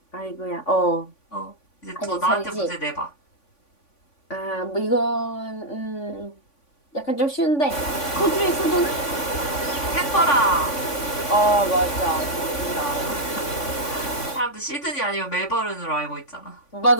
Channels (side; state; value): right; late; 3.5 ms